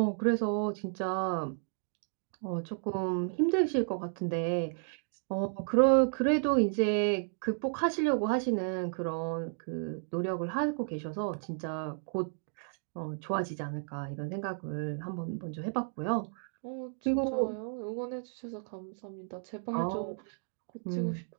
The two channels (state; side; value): silent; left; digital silence